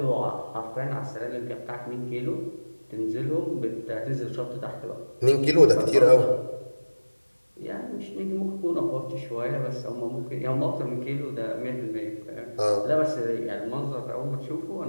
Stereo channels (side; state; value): both; inverted; correlation -1.00